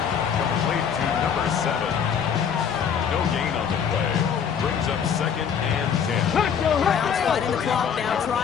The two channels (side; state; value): right; quieter; 7.5 dB